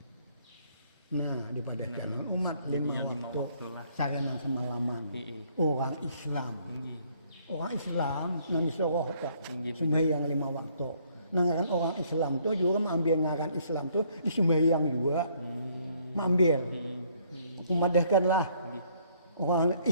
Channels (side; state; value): both; inverted; correlation -0.65